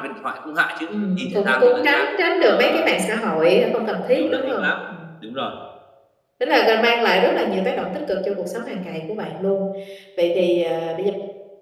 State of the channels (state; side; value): identical; both; correlation 1.00